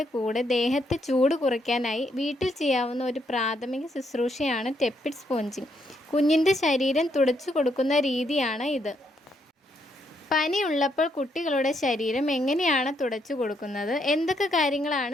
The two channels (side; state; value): both; normal; correlation 0.75